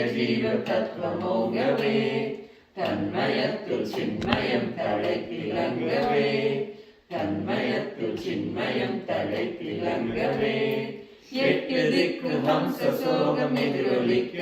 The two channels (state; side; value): identical; both; correlation 1.00